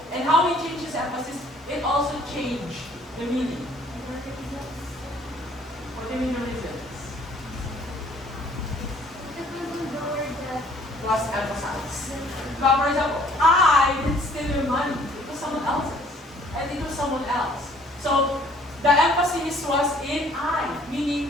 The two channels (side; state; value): both; normal; correlation 0.58